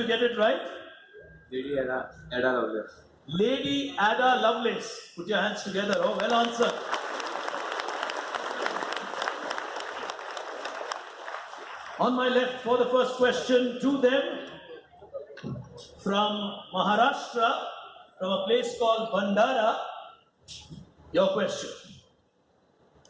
get it right. Ada lovers. Lady Ada Lovelace. Put your hands together. Oh, well answered. On my left for the first question to them from Maharashtra, from a place called Bandara. Your question.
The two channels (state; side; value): identical; both; correlation 1.00